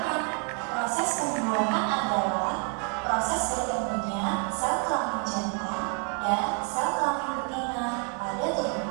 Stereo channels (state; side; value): quieter; left; 38.9 dB